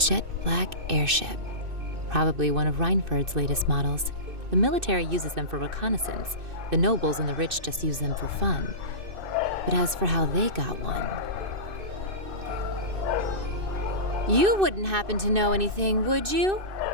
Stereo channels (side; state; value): left; late; 2.6 ms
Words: black airship. Probably one of Reinford's latest models. The military uses them for reconnaissance. The nobles and the rich just use them for fun. But as for how they got one... You wouldn't happen to know anything, would you?